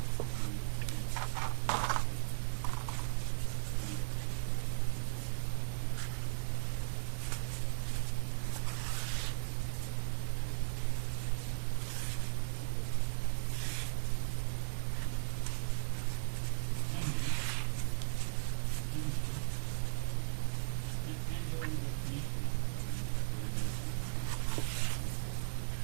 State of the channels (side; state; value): left; silent; digital silence